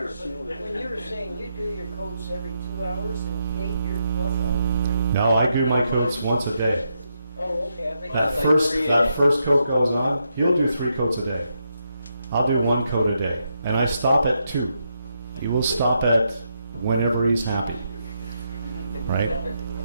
When you were saying you do your coats every 2 hours and Kate your 12 hours, right? No, I do my coats once a day. Oh, okay, I think That that's first coat goes on, he'll do 3 coats a day. I'll do 1 coat a day. And I stop at 2. He will stop at whenever he's happy. Right?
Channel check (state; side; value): inverted; both; correlation -0.81